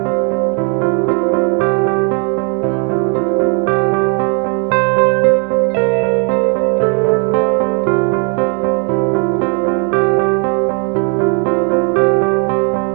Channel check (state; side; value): quieter; left; 38.3 dB